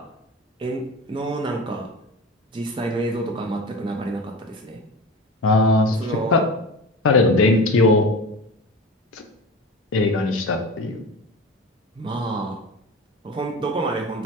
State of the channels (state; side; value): normal; both; correlation 0.31